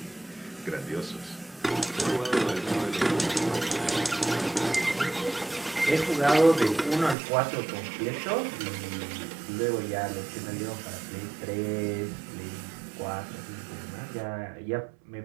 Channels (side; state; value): left; drops out; at 7.2 s